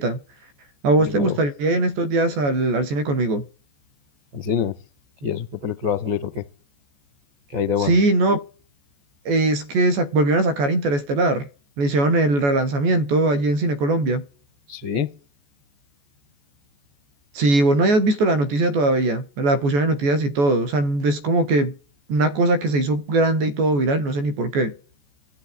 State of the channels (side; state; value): left; late; 14 ms